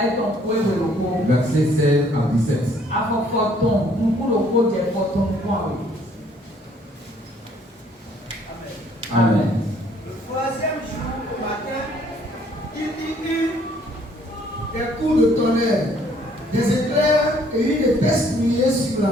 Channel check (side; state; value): both; normal; correlation 0.62